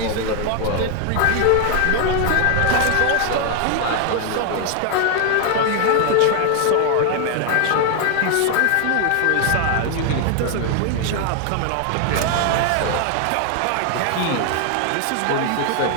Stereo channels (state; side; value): different; both; correlation 0.00